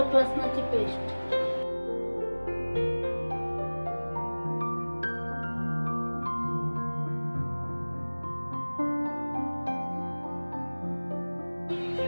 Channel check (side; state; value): both; inverted; correlation -1.00